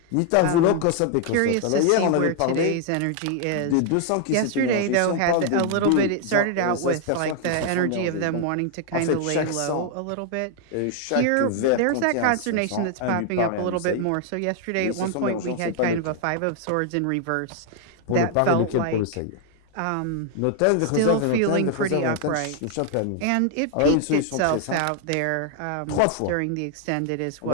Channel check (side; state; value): both; different; correlation 0.00